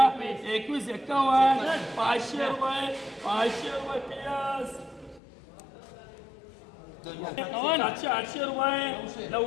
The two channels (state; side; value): drops out; right; at 5.2 s